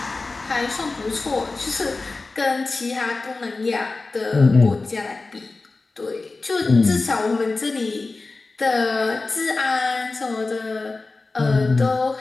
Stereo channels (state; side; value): quieter; right; 3.6 dB